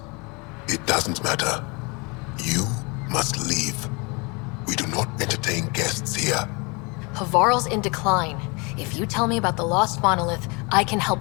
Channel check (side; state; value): right; quieter; 29.5 dB